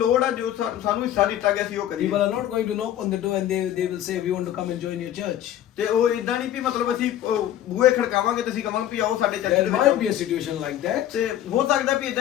ਆ ਜੋ ਸਾਨੂੰ ਹਿੱਸਾ ਦਿੱਤਾ ਗਿਆ ਸੀ ਉਹ ਕਰੀਏ। People are not going to knock on the door and they will say, we want to come and join your church. ਤੇ ਉਹ ਇਦਾਂ ਨਹੀਂ ਵੀ ਮਤਲਬ ਅਸੀਂ ਬੂਹੇ ਖੜਕਾਵਾਂਗੇ ਤੇ ਅਸੀਂ ਕਹਾਂਗੇ ਵੀ ਆਓ ਸਾਡੇ ਚਰਚ There ਦੇ might be ਵਿੱਚ। a situation like that, ਤੇ ਹੋ ਸਕਦਾ ਵੀ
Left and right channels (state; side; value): quieter; right; 11.8 dB